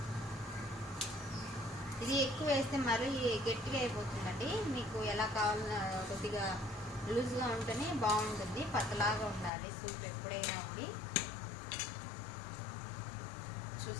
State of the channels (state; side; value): drops out; right; at 9.5 s